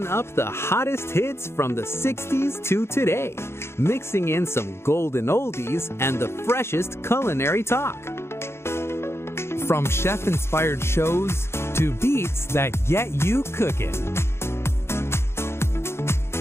up the hottest hits from the 60s to today, mixing in some golden oldies and the freshest culinary talk. From chef-inspired shows to beats that get you cooking.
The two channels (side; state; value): right; late; 0.12 ms